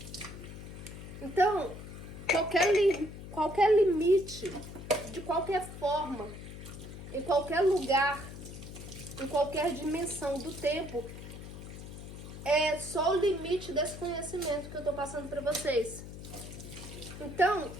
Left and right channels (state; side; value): noise; left; hum, 12 dB below the sound